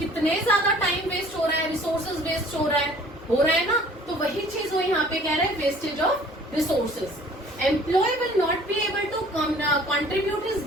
ज्यादा टाइम वेस्ट हो रहा है, रिसोर्सेज वेस्ट हो रहा है ना। तो वही चीज वो यहाँ पे कह रहे हैं, wastage of resources. Employ will not be able to contribute his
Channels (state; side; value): normal; both; correlation 0.52